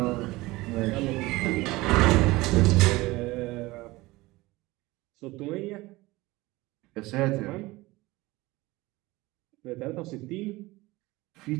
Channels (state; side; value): quieter; left; 20.4 dB